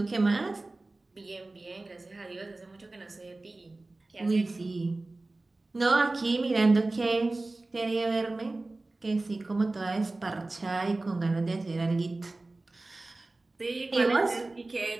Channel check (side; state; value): left; quieter; 3.1 dB